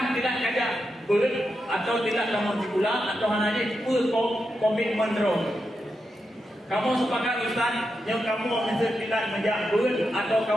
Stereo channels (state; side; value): normal; both; correlation 0.87